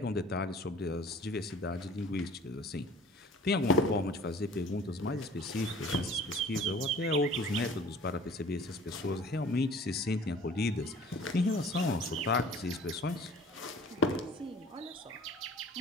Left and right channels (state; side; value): normal; both; correlation 0.49